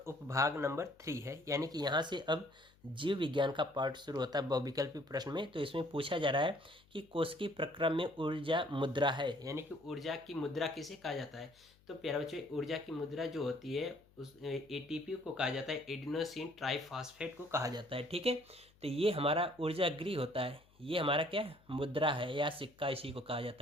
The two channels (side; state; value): left; noise; hum, 29 dB below the sound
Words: नंबर 3 है, यानी कि यहाँ से अब जीव विज्ञान का पार्ट शुरू होता है बहुविकल्पी प्रश्न में। तो इसमें पूछा जा रहा है कि कोशिकीय प्रक्रम में ऊर्जा मुद्रा है, यानी कि ऊर्जा की मुद्रा किसे कहा जाता है। तो प्यारे बच्चों ऊर्जा की मुद्रा जो होती है उस ATP को कहा जाता है, एडिनोसिन ट्राइफॉस्फेट को कहा जाता है। ठीक है, तो ये हमारा ऊर्जा गृह होता है, ये हमारा क्या मुद्रा है या सिक्का, इसी को कहा